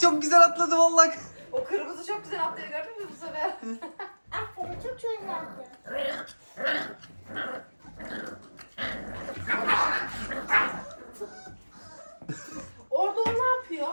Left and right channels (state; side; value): inverted; both; correlation -1.00